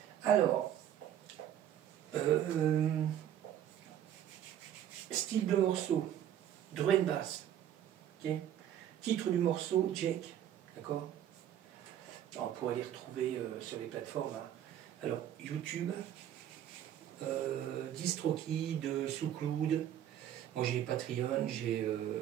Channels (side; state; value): left; quieter; 10.7 dB